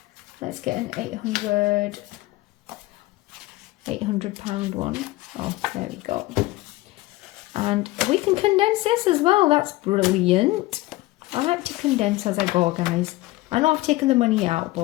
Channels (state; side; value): quieter; right; 19.2 dB